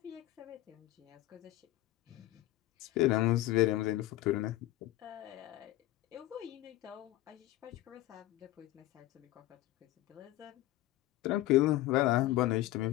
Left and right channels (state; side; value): quieter; right; 16.3 dB